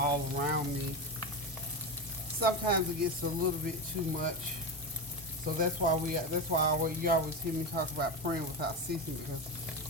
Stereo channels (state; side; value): normal; both; correlation 0.17